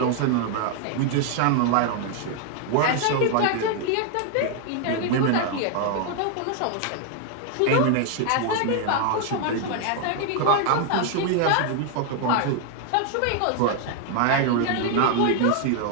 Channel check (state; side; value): different; both; correlation 0.00